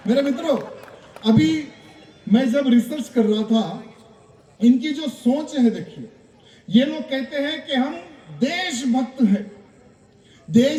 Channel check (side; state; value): both; identical; correlation 1.00